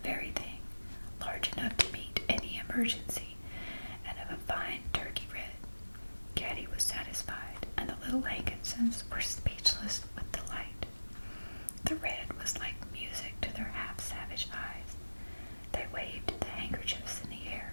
very thing, large enough to meet any emergency, and of a fine turkey red. Caddie was satisfied, and the little Hankinsons were speechless with delight. The red was like music to their half-savage eyes. They waved the handkerchiefs in the air.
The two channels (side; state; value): both; inverted; correlation -1.00